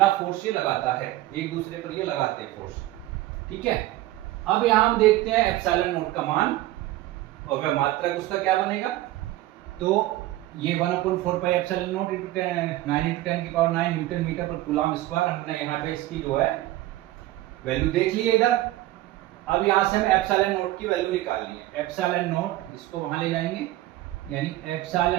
फोर्स ये लगाता है, एक दूसरे पर ये लगाते हैं फोर्स। ठीक है, अब यहां हम देखते हैं ε0 का मान, और वह मात्रक उसका क्या बनेगा। तो ये 1/4πε0 × 9 × 10⁹ न्यूटन मीटर पर कूलाम स्क्वायर, हमने यहाँ पे इसकी जो है वैल्यू देख ली है इधर। अब यहाँ से हमें ε0 की वैल्यू निकालनी है। ε0 इसको वहां ले जाएंगे, यानी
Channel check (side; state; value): left; quieter; 16.4 dB